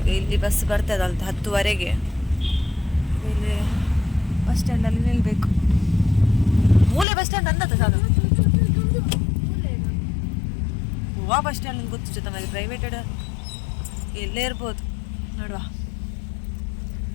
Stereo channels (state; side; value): drops out; right; at 7.1 s